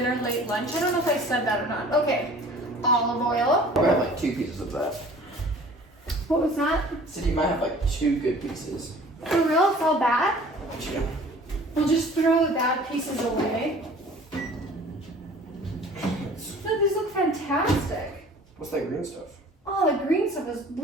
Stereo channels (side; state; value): both; normal; correlation 0.48